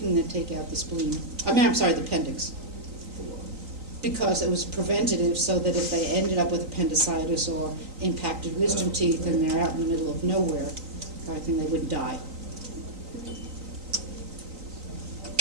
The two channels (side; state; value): left; late; 3.9 ms